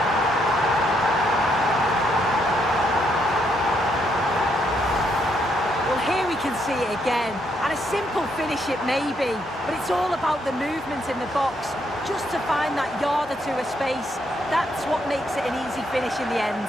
Well, here we can see it again. And a simple finish it may be, but it's all about the movement in the box. Just to find that yard or two of space. That's what makes it an easy finish in the end.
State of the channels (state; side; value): normal; both; correlation 0.75